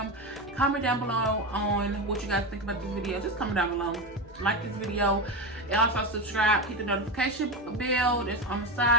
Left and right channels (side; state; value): both; normal; correlation 0.18